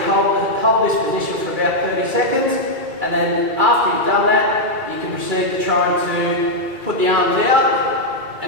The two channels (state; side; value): late; left; 2.3 ms